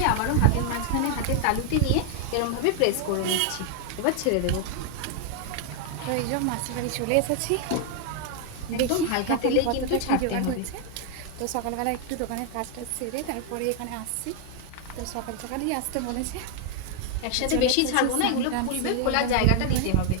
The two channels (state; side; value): different; both; correlation 0.00